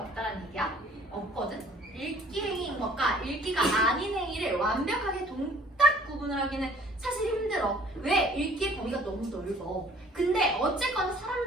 얘기야? 없거든? 읽기 행위인 것과 읽기가 아닌 행위를 완벽하게 동딱 구분을 하기는 사실 힘들어. 왜? 읽기의 범위가 너무 넓어. 근데 어쨌거나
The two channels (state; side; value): normal; both; correlation 0.55